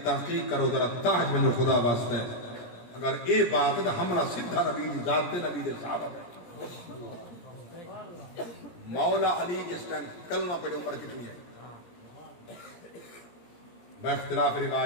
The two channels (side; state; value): right; late; 17 ms